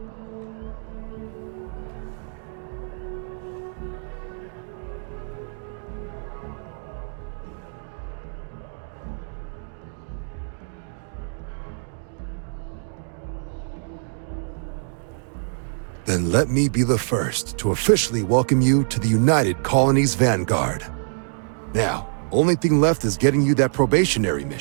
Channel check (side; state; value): left; silent; digital silence